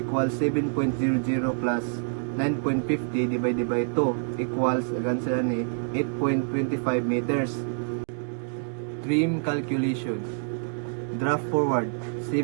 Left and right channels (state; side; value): silent; left; digital silence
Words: 7.00 plus 9.50 divided by 2 equals 8.25 meters. Trim calculation. Draft forward